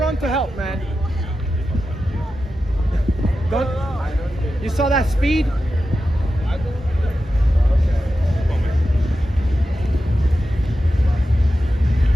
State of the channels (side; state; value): both; normal; correlation 0.91